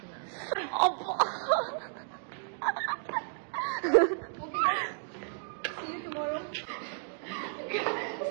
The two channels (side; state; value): left; silent; 56 dB below the other